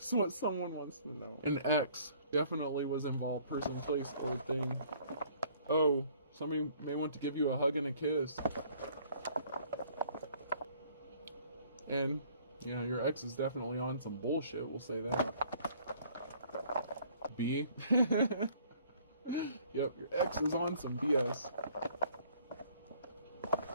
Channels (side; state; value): both; inverted; correlation -0.58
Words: what someone wants to know. An ex definitely was involved, person, place, or thing. Oh, somebody may want to give you a hug and a kiss. And yeah, your ex is definitely on some bullshit, we'll say that. B. Yep, your ex is on some BS.